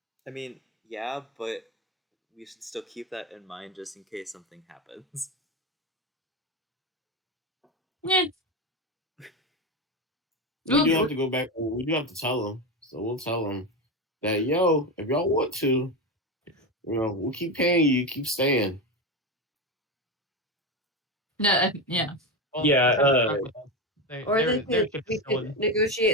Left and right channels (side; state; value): both; normal; correlation 0.16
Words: I mean, yeah, but we should still keep that in mind just in case something happens. Yeah. We do have to go back. We do have to tell them, so we'll tell them that yo, if y'all want to, we'll keep paying you, keep staying. No, yeah. Well, Yeah, if they're stuck with us, Or their we ship is could still in.